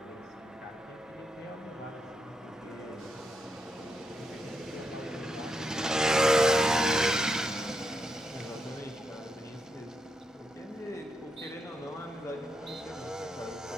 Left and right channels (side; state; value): both; normal; correlation 0.82